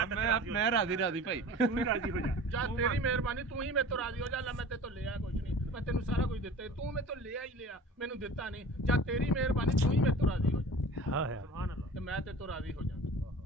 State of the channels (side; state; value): both; normal; correlation 0.40